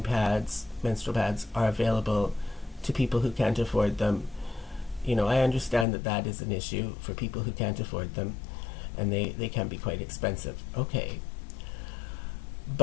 pads, menstrual pads, are available to people who can't afford them. You know, I understand that is an issue for people who can't afford them, and they can be quite expensive. Okay.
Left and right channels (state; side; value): drops out; right; at 5.9 s